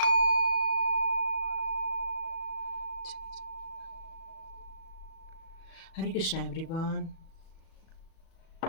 हरे कृष्णा एवरीवन।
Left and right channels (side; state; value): right; late; 37 ms